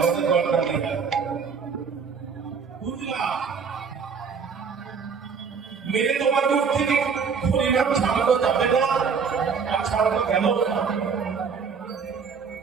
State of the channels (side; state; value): left; quieter; 5.9 dB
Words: গলা দিয়ে বুঝলাম। মেরে তোমার মুখ থেকে হরিনাম ছাড়ানো যাবে না, আর ছাড়ানো গেল না।